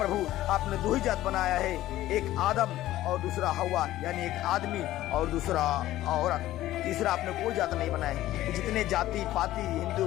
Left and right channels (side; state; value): right; quieter; 14.8 dB